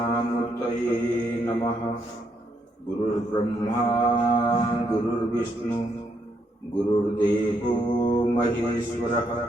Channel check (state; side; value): normal; both; correlation 0.75